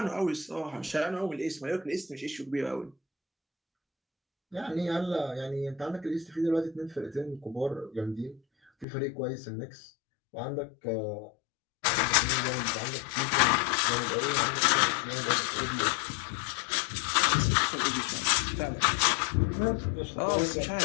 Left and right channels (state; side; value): drops out; right; at 8.8 s